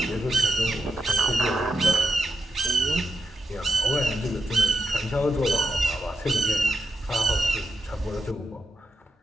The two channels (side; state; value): both; normal; correlation 0.86